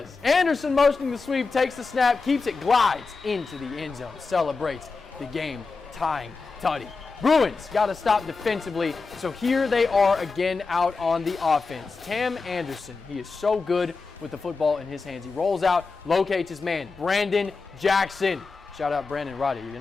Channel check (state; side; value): quieter; right; 4.3 dB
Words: Anderson motioning the sweep, takes the snap, keeps it, glides into the end zone, celebrates the game-tying tutty. Bruins got to stop defensively, so here they are again out on the offense. Tam Anderson, he is so good with the football in his hands. He rolls out, locates his man, Brandon Jackson. Shout out Brandon Roddy, you